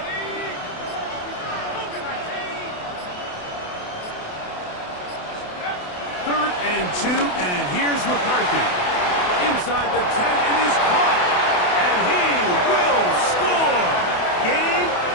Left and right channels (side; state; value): right; late; 28 ms